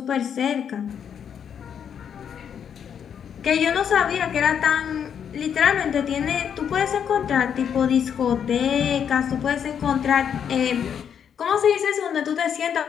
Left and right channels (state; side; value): quieter; right; 8.1 dB